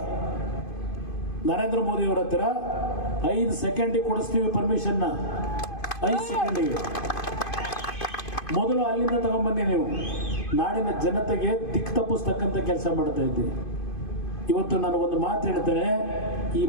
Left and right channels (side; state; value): right; late; 2.5 ms